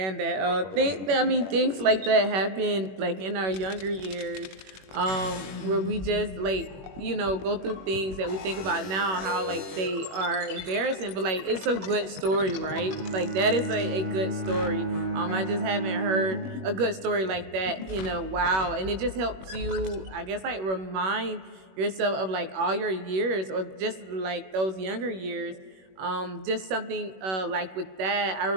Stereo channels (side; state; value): left; late; 21 ms